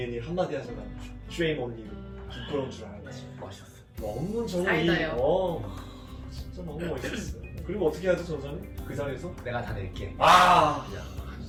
한마디 하잖아. Shame on you. 부끄러운 줄 알았지. 멋있었어. 너무 저는 사이다요. 진짜 너무 멋있었어요. 그리고 어떻게 하죠, 전사님? 그 자리에서? 내가 다 낼게. 아!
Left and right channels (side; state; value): both; identical; correlation 1.00